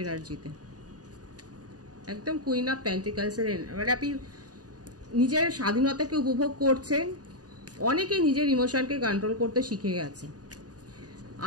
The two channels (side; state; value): left; late; 0.68 ms